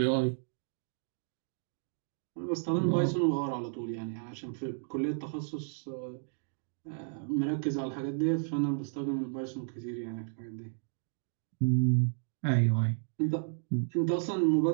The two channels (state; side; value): silent; left; digital silence